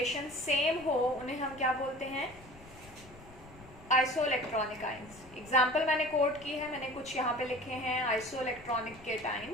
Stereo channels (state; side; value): noise; left; rumble, 21 dB below the sound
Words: सेम हो उन्हें हम क्या बोलते हैं? Isoelectronic ions. एग्जाम्पल मैंने कोट की है, मैंने कुछ यहाँ पे लिखे हैं आइसो इलेक्ट्रॉनिक